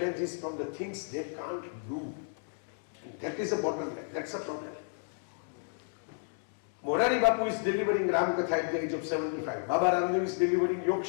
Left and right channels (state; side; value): silent; right; digital silence